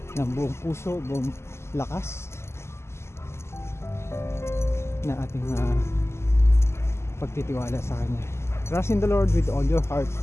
ng buong puso, buong lakas na ating pagtitiwala sa Kanya. Trust in the Lord with all your heart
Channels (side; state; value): right; late; 0.13 ms